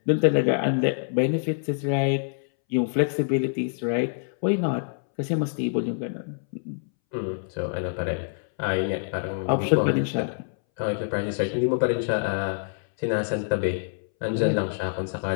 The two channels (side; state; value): right; silent; 61 dB below the other